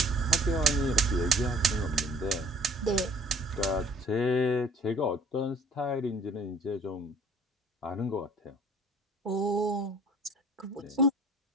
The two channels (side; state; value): both; normal; correlation 0.53